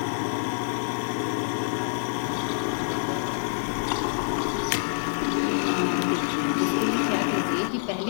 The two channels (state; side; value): silent; right; 60 dB below the other